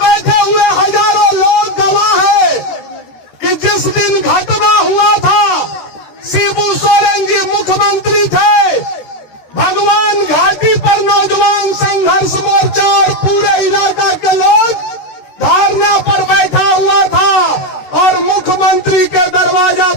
हुए हजारों लोग गवाह है कि जिस दिन घटना हुआ था शिबू सोरेन जी मुख्यमंत्री थे। भगवान घाटी पर नौजवान संघर्ष मोर्चा और पूरे इलाका के लोग धरना पर बैठा हुआ था, और मुख्यमंत्री के दरवाजा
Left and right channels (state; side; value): late; right; 13 ms